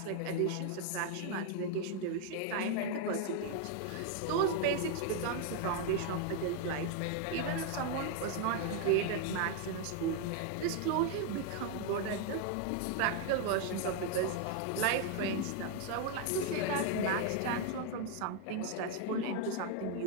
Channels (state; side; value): different; both; correlation 0.01